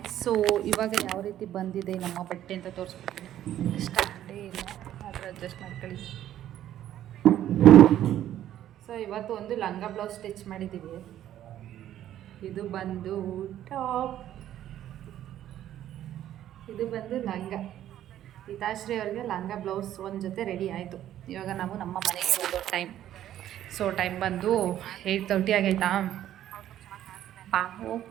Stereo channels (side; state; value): left; quieter; 11.9 dB